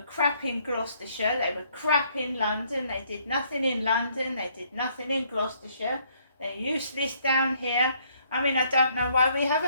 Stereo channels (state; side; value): inverted; both; correlation -0.67